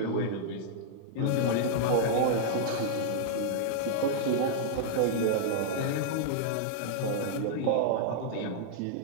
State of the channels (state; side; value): different; both; correlation -0.01